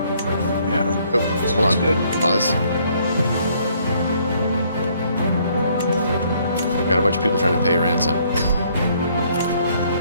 Yeah. oh, hold on. Good. Pause. Got a bunch of people trying to pay ransom.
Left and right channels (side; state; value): both; inverted; correlation -0.65